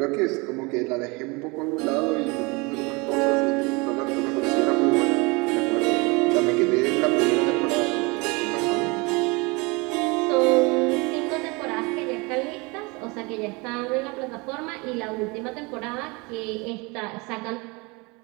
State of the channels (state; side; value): quieter; left; 27.2 dB